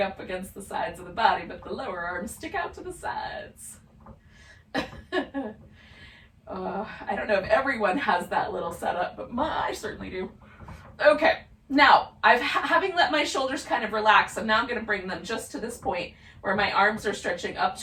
against the sides of the body, but the lower arms stick out to the sides. I don't know if everyone has that little setup, but I certainly do. Okay, now having let my shoulders kind of relax, and now I'm going to bring them just to this point where my arms are stretching up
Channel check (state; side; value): identical; both; correlation 1.00